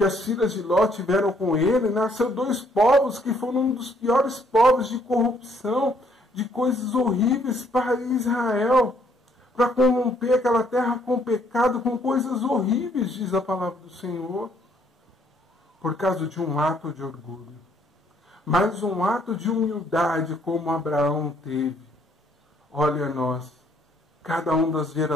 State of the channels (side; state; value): both; normal; correlation 0.66